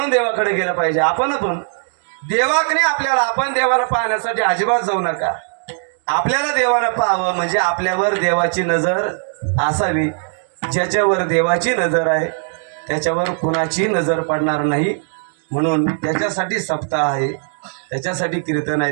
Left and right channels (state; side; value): silent; left; digital silence